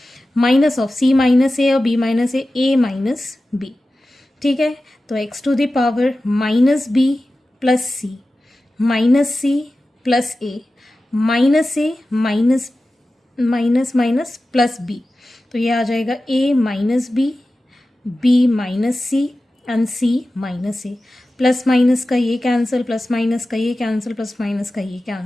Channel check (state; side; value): normal; both; correlation 0.94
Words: Minus of c minus A और b minus A, a minus B. ठीक है, तो x to the power minus B plus C minus C plus A minus A minus minus minus plus B. तो ये आ जाएगा a minus B minus C and c minus A. Plus minus का ये कैंसिल, प्लस माइनस का ये कैंसिल, प्लस माइनस का ये